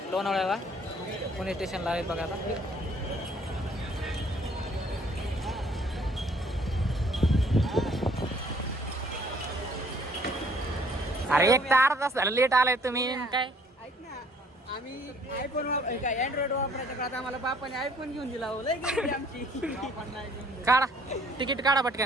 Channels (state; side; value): normal; both; correlation 0.60